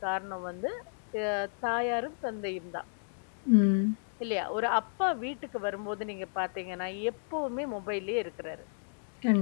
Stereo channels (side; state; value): right; silent; digital silence